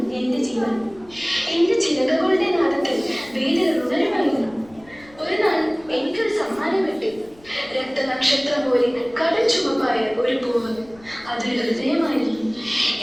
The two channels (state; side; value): noise; left; rumble, 26 dB below the sound